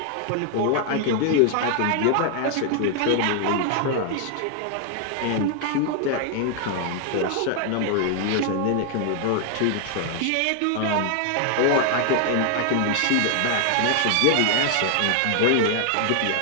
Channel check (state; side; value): different; both; correlation 0.00